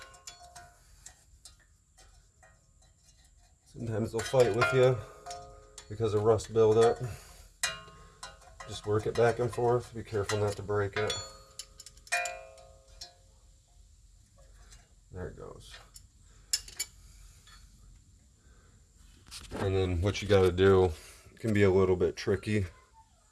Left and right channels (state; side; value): identical; both; correlation 1.00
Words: Sometimes they'll fight with you because of rust buildup. Just work it back and forth. Be careful not to break it. There it goes. And then what you got to do, can be a little bit tricky,